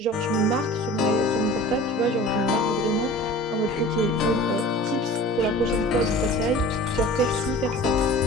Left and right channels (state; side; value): normal; both; correlation 0.41